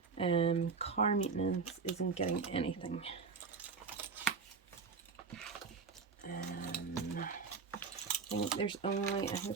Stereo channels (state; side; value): quieter; left; 5.0 dB